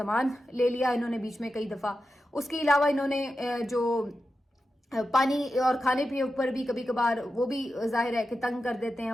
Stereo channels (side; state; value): both; normal; correlation 0.91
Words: لے لیا انہوں نے بیچ میں کئی دفعہ. اس کے علاوہ انہوں نے جو پانی اور کھانے پینے اوپر بھی کبھی کبھار وہ بھی ظاہر ہے کہ تنگ کر دیتے ہیں،